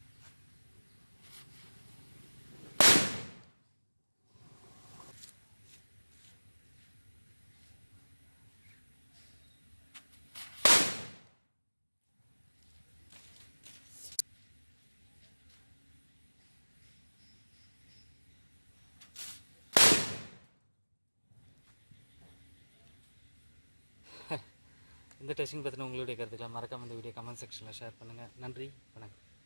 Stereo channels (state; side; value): inverted; both; correlation -1.00